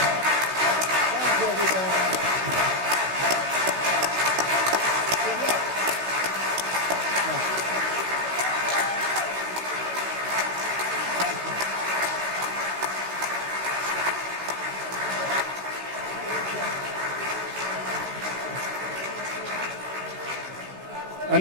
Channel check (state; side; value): late; left; 16 ms